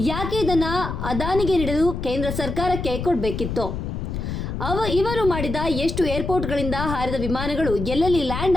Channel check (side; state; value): left; noise; rumble, 4 dB below the sound